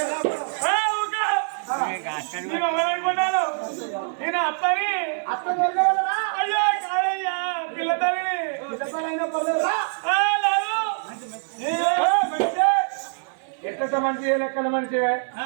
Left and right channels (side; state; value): left; silent; 57 dB below the other